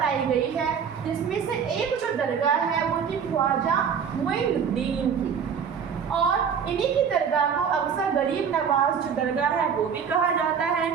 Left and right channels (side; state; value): left; quieter; 7.0 dB